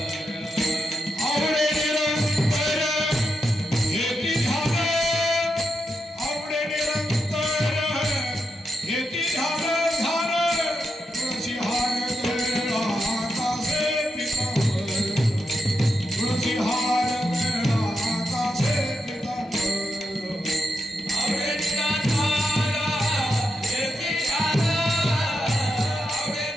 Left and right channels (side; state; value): both; normal; correlation 0.85